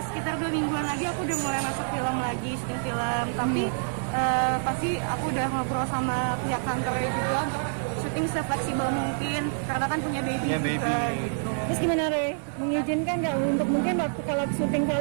2 mingguan lagi aku udah mulai masuk film lagi, syuting film. Tapi pasti aku udah ngobrol sama pihak kantornya juga untuk syuting sefleksibel mungkin, karena kan punya baby Punya juga baby. gitu. Terus gimana Re? Mengizinkan nggak untuk mungkin waktu kalau syuting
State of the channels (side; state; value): left; silent; 60 dB below the other